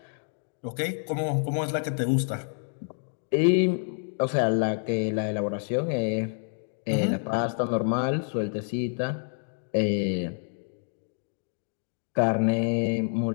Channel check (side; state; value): right; silent; digital silence